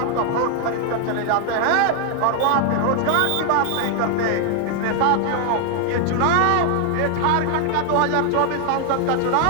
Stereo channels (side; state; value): both; different; correlation 0.00